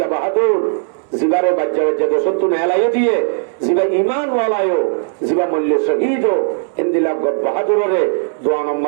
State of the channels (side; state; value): left; silent; 68 dB below the other